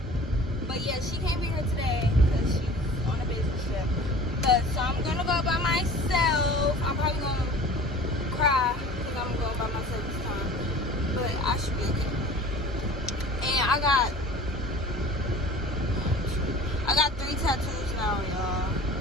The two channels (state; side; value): normal; both; correlation 0.43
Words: But yeah, she can't be here today because she's on a business trip. But so I'm gonna go by myself. I'm probably gonna cry because I'm going by myself this time. But I should be okay. And I got 3 tattoos now, y'all.